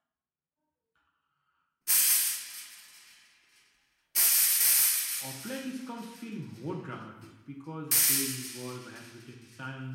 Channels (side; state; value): both; identical; correlation 1.00